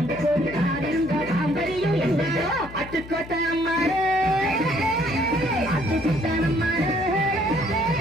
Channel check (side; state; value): left; noise; hum, 15 dB below the sound